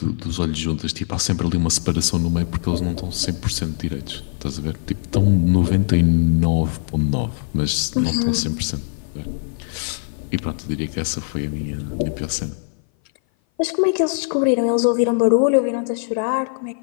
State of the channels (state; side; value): silent; right; 57 dB below the other